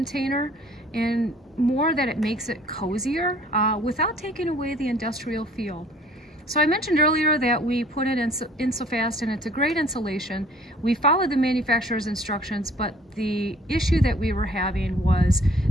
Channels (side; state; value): both; normal; correlation 0.55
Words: and more that it makes it cozier without taking away the industrial feel. So I mentioned earlier that we put it in Insofast, and it's a great insulation. We followed the manufacturer's instructions, but the issue that we were having was